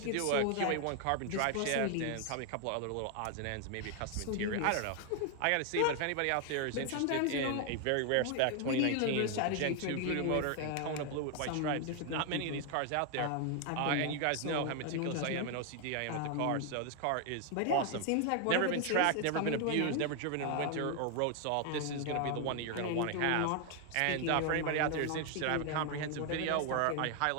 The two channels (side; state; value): both; different; correlation 0.00